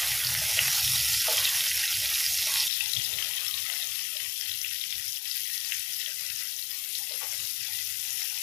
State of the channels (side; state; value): right; drops out; at 2.7 s